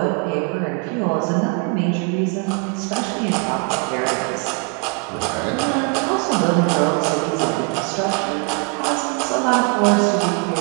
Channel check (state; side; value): quieter; left; 35.3 dB